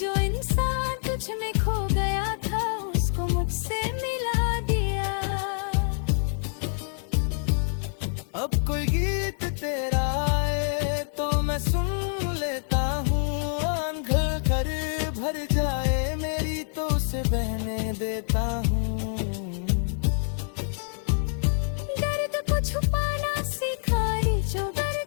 जो इंसान तुझ में खो गया था उसको मुझसे मिला दिया। अब कोई गीत तेरा आए तो मैं सुन लेता हूँ। आंखें कर भर जाए मेरी तो उसे बहने देता हूँ। दर्द को छुपाना सीखा रे जो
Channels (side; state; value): right; silent; 59 dB below the other